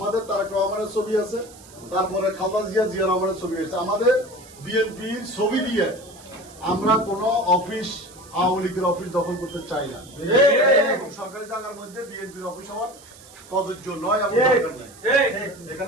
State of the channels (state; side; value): noise; right; hiss, 21 dB below the sound